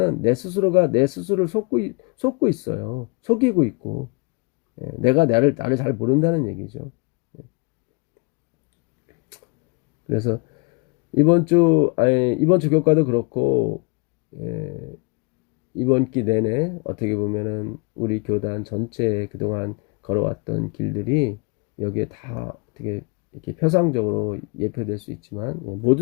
내 스스로가 내 스스로를 속고 있어요. 속이고 있고 내가 나를 잘 모른다는 얘기죠. 그래서 이번 주 교과도 그렇고 이번 기 내내 어떻게 보면은 우리 교단 전체에 그동안 걸어왔던 길들이 여기에 다 어떻게 이렇게 표상적으로 예표될 수 있지만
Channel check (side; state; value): right; quieter; 31.9 dB